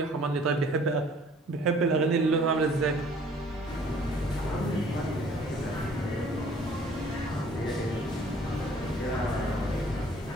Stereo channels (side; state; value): both; normal; correlation 0.55